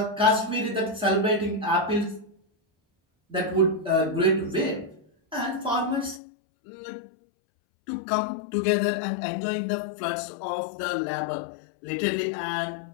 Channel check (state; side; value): drops out; right; at 6.2 s